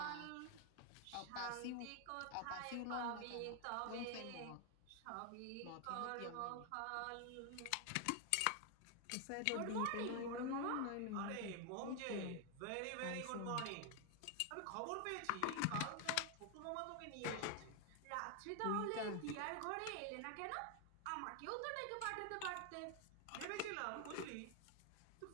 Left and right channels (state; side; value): different; both; correlation 0.00